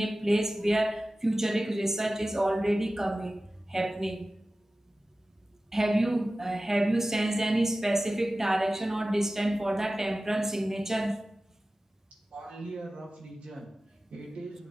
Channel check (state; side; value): normal; both; correlation 0.96